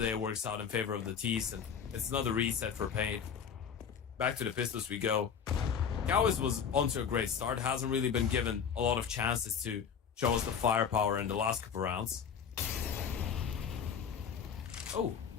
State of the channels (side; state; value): right; quieter; 7.2 dB